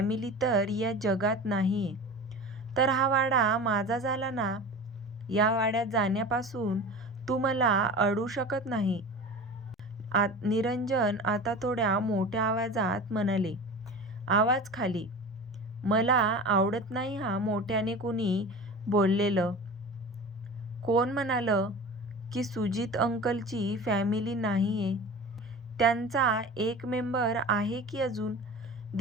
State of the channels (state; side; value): normal; both; correlation 0.34